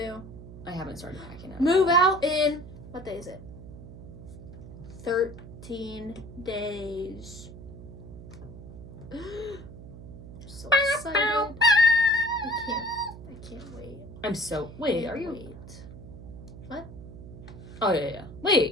I haven't started packing it. Move out in, what day is it? 13 days. I'm so excited. I can't wait. I'm so, wait, are you? Wait. What? Oh, yeah.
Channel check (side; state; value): right; noise; hum, 14 dB below the sound